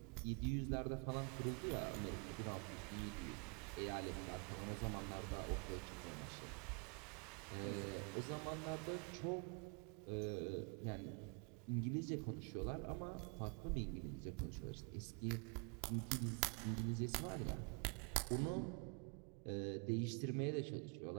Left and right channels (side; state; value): left; quieter; 33.7 dB